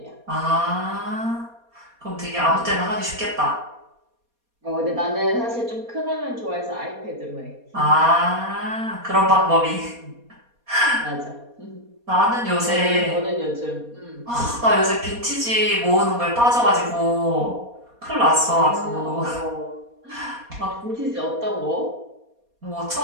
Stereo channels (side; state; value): left; late; 4.2 ms